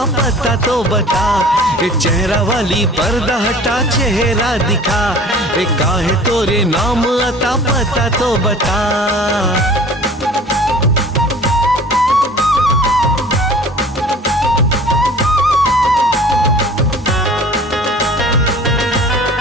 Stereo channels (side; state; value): both; normal; correlation 0.46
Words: पता तो बता। ये चेहरा वाली पर्दा हटा चेहरा दिखा। ये काहे तोरे नाम आता पता तो बता।